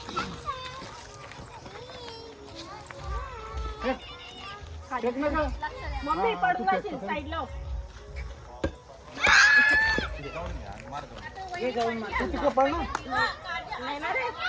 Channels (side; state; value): both; identical; correlation 1.00